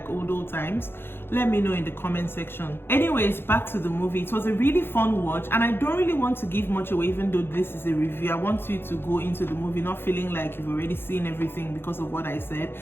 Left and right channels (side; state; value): right; late; 0.11 ms